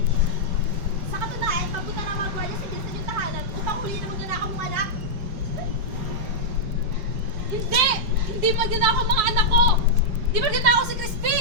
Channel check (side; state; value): left; late; 4.7 ms